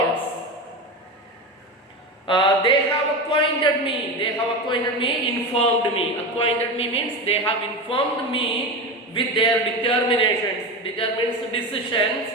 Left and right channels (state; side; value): normal; both; correlation 0.22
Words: They have acquainted me, informed me. Acquainted me means they have informed me with their decisions,